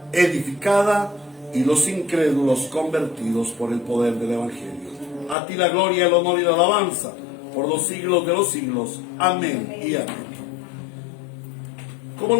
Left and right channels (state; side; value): drops out; right; at 5.4 s